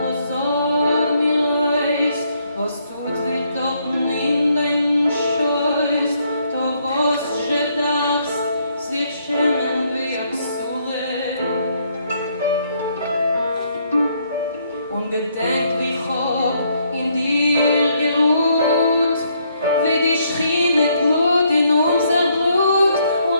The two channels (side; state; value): both; inverted; correlation -0.72